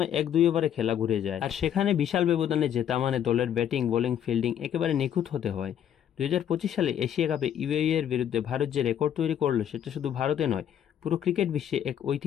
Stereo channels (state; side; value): quieter; right; 9.7 dB